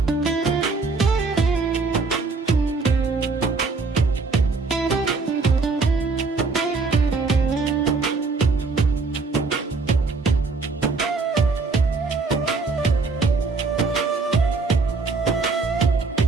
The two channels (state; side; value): quieter; left; 4.1 dB